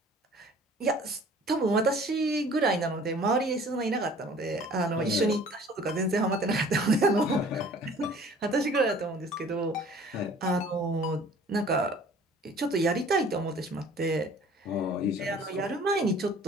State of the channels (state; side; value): normal; both; correlation 0.50